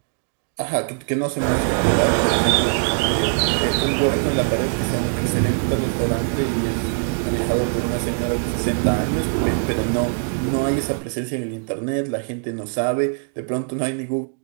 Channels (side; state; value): left; silent; 64 dB below the other